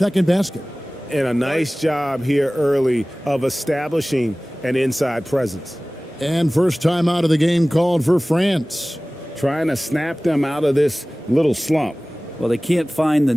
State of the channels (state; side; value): normal; both; correlation 0.98